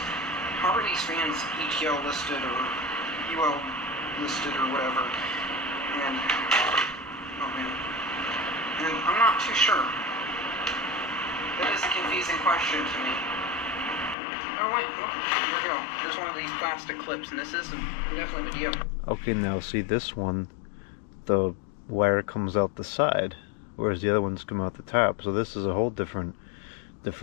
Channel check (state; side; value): drops out; right; at 14.2 s